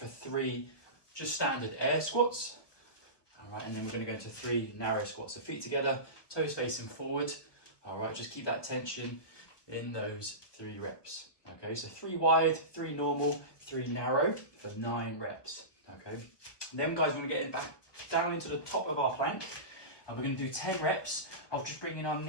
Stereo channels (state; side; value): late; right; 1.2 ms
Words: 3 just standard air squats, all right, and then we're gonna go into 3 narrow squats. So feet together, toes facing forward, all right, just keep that tension in those 3 reps, okay? So 3 wide, 3 normal, 3 narrow for 9 reps, okay? And then guys, we're gonna get back down into the top of our plank, and we're going to do 10 reps of just bringing our